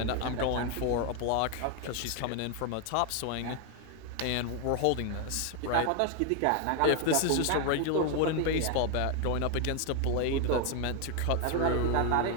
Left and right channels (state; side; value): different; both; correlation 0.01